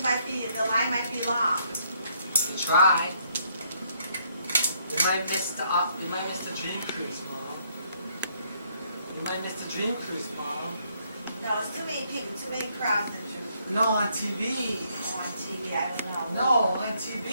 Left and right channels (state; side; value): inverted; both; correlation -0.70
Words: might be, the line might be long. You try. We might miss the dream cruise, Mom. You might miss the dream cruise, Mom. No, it's too many people, too many crowds to do. No, on TV. Oh, on TV, I don't know. No, on